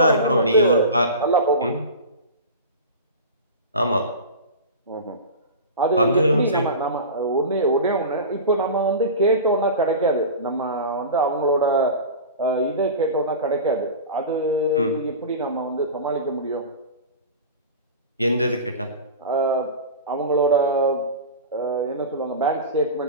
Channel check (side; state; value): both; inverted; correlation -0.30